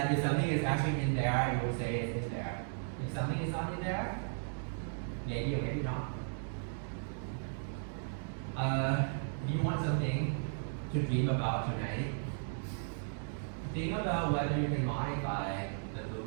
if something is actually in there, it will say it's in there. If something is not in there, maybe or maybe not. If you want something to dream about tonight, think about whether you can modify the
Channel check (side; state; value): left; silent; digital silence